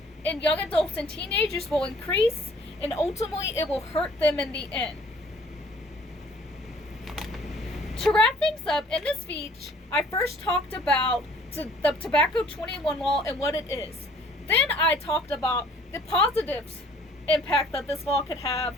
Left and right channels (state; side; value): normal; both; correlation 0.56